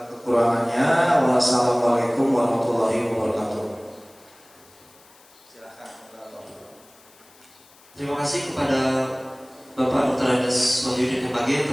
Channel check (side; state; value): left; noise; hiss, 27 dB below the sound